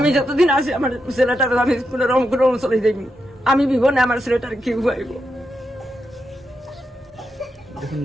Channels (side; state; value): both; normal; correlation 0.85